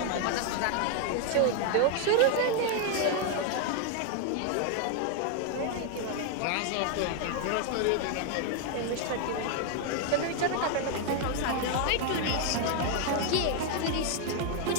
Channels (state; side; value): different; both; correlation 0.00